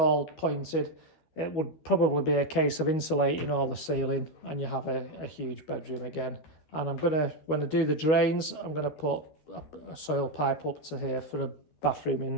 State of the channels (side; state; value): right; late; 12 ms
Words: pointed, it would probably be a case of insulating all the ceiling, and you have a huge bedroom again. And I'm going to, when I do the drains, I'm going to put a soil pipe up to here for a bathroom